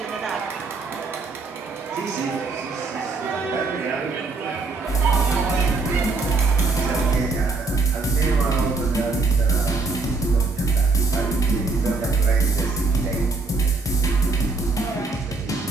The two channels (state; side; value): quieter; left; 3.8 dB